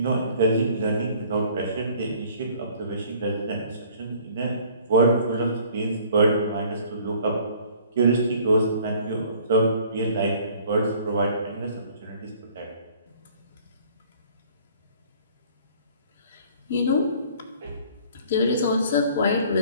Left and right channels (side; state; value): both; inverted; correlation -0.54